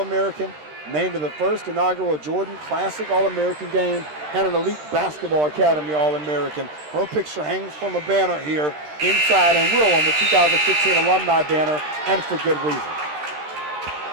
named to the first inaugural Jordan Classic All-American game, and an Elite Basketball Academy All-American. Her picture hangs from a banner here inside and will on the 2015 alumni banner, and for good reason.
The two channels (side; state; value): left; late; 13 ms